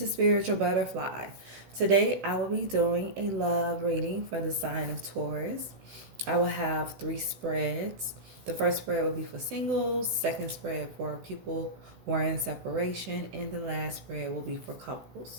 Spiritual Butterfly. Today, I will be doing a love reading for the sign of Taurus. I will have 3 spreads. The first spread will be for singles, second spread for people who are in separation, and the last spread will be for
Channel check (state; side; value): late; left; 16 ms